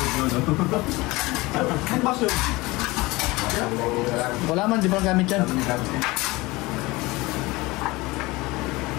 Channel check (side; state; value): right; quieter; 22.0 dB